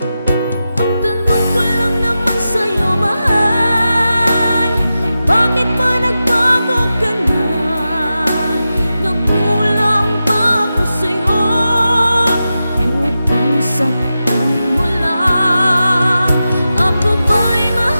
Ang tanong ko lang naman sa'yo, mahal, bakit ba nagbago ka na? Nagkulang ba ako sa'yo upang saktan mo lang? Ako ba'y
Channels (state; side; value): inverted; both; correlation -0.91